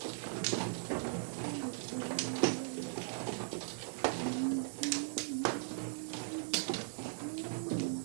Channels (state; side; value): silent; left; digital silence